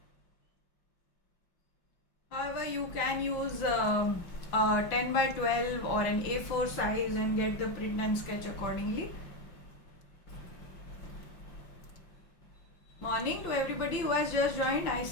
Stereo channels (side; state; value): right; late; 5.9 ms